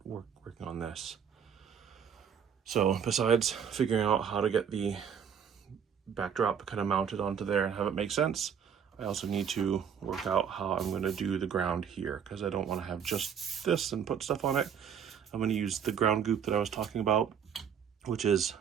working on this. So besides figuring out how to get the backdrop kind of mounted onto there and have it make sense, I also need to work out how I'm going to do the ground here, because I don't want to have just this and put stuff on it. I'm going to use the ground goop that I was talking about, which is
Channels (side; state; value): left; quieter; 7.7 dB